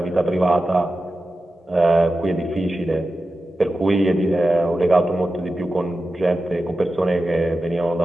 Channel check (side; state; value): both; normal; correlation 0.92